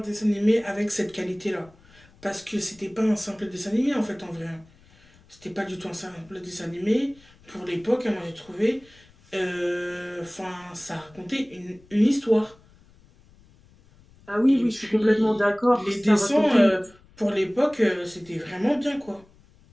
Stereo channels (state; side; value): noise; left; rumble, 28 dB below the sound